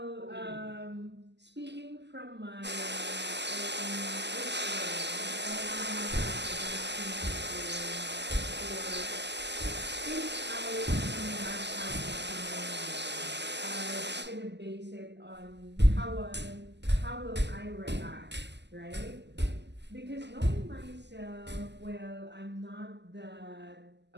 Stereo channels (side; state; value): left; late; 0.50 ms